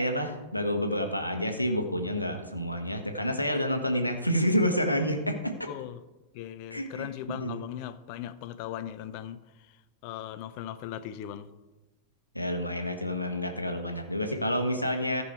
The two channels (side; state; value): both; inverted; correlation -0.63